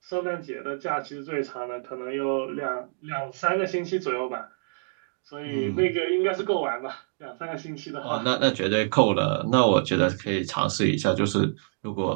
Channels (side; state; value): left; silent; digital silence